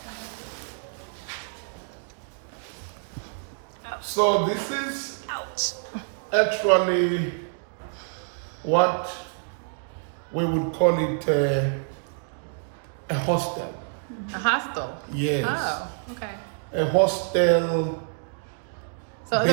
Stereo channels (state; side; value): silent; left; 59 dB below the other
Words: so this is actually what we would call it a hostel. A hostel? Yes. Oh, okay. A hostel, So